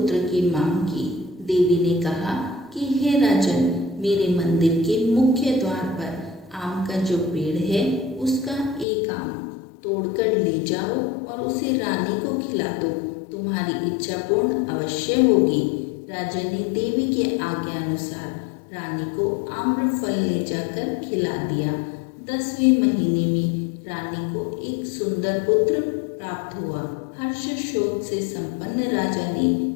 की मांग की। देवी ने कहा कि हे राजन, मेरे मंदिर के मुख्य द्वार पर आम का जो पेड़ है उसका एक आम तोड़कर ले जाओ और उसे रानी को खिला दो, तुम्हारी इच्छा पूर्ण अवश्य होगी। राजा ने देवी के आज्ञा अनुसार रानी को आम्रफल ले जाकर खिला दिया। 10वें महीने में रानी को एक सुंदर पुत्र प्राप्त हुआ। हर्ष शोक से संपन्न राजा ने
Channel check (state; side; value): drops out; right; at 8.8 s